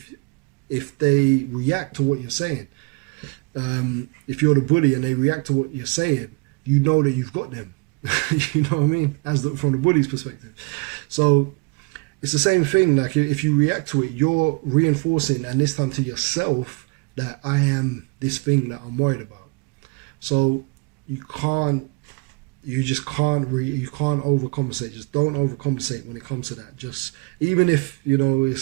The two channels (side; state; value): left; quieter; 29.0 dB